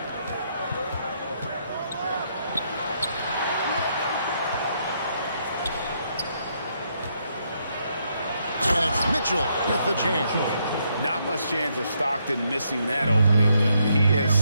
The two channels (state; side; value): inverted; both; correlation -0.75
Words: Mitchell with the jam. Not much chance of Stockton missing that opening. He has